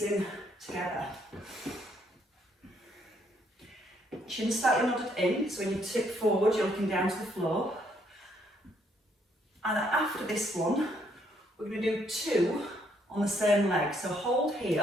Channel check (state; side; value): normal; both; correlation 0.70